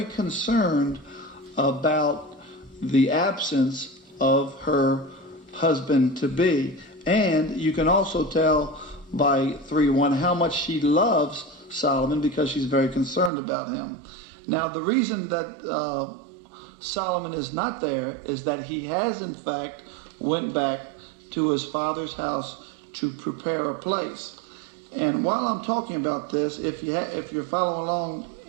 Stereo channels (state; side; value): drops out; left; at 13.3 s